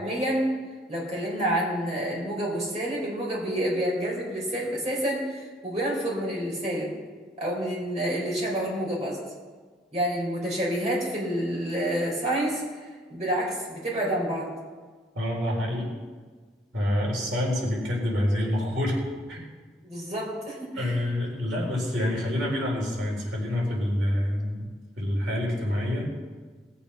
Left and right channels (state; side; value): normal; both; correlation 0.65